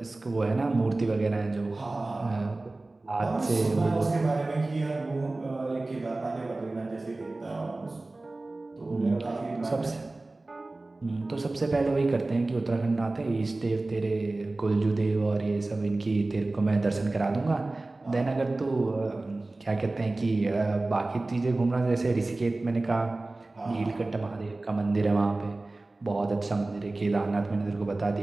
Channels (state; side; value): quieter; left; 3.0 dB